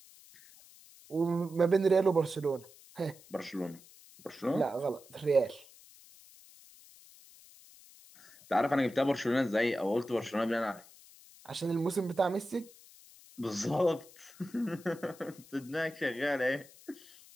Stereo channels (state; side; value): noise; left; hiss, 23 dB below the sound